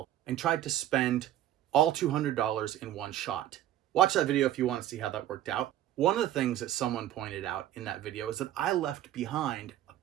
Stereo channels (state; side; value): quieter; left; 12.5 dB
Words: and tried to spend all $200 in one shot. Watch that video if you want to see how that worked out. One of the things that someone pointed out in that video is that I left behind a